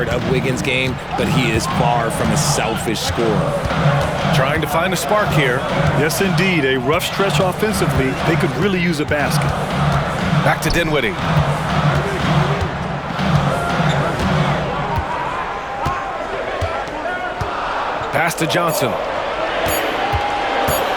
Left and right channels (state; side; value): identical; both; correlation 1.00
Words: of Wiggins' game, but he is far from a selfish scorer. Trying to find a spark here. Yes, indeed. A rough stretch offensively. They could really use a basket. Back to Dinwiddie. Pass to Johnson.